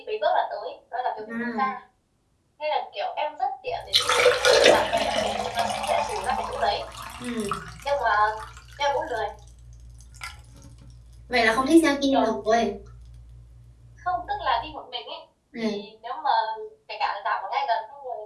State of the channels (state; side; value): identical; both; correlation 1.00